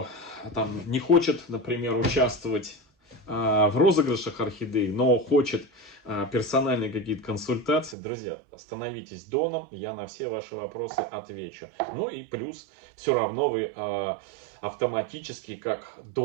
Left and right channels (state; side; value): drops out; left; at 8.0 s